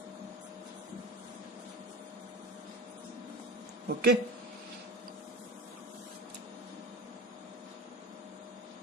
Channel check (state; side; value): normal; both; correlation 0.31